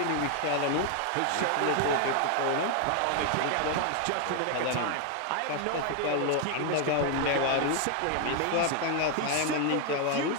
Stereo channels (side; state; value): both; different; correlation 0.00